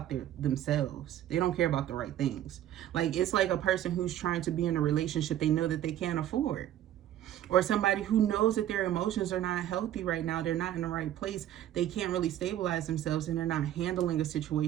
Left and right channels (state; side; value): quieter; left; 12.1 dB